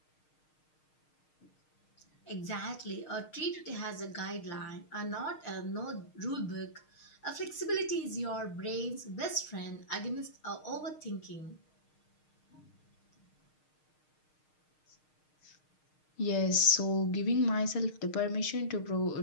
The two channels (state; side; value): late; right; 6.5 ms